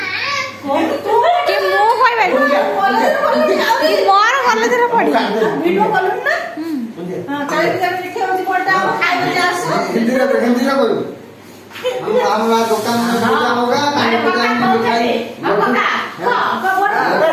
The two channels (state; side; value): identical; both; correlation 1.00